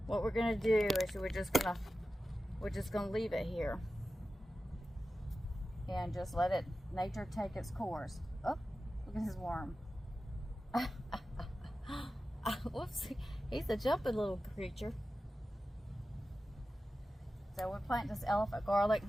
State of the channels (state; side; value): normal; both; correlation 0.94